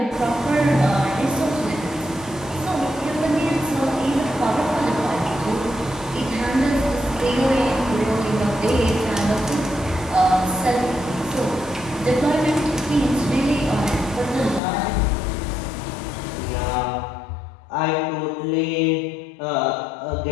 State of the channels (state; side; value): drops out; right; at 14.6 s